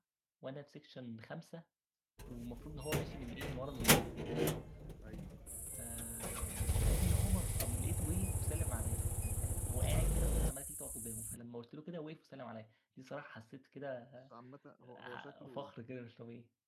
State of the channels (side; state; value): both; identical; correlation 1.00